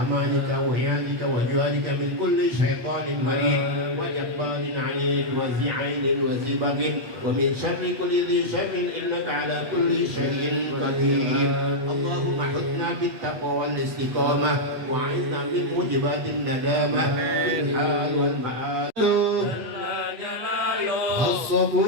amanika wa iyadika wa juwarika min kulli shaytanin marid wa jabbarin 'anid wa zi'ainin wa zibagin wa min syarri kulli dhi syarrin innaka 'ala kulli shay'in qadir. Allahumma hidna bit taqwa wal istiqamah wa 'inna min mujibatin nadamah fil hal wal ma'ad. Jalla jalaluh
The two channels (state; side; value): late; left; 8.4 ms